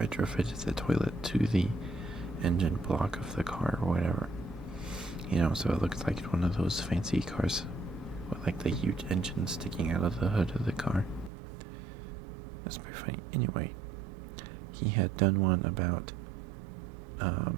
the toilet to the engine block of the car or whatever. So it looks like one of those fancy cars with like the huge engine sticking out of the hood of the car. That's pretty funny. Anyway, he had done one about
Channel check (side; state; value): left; drops out; at 11.3 s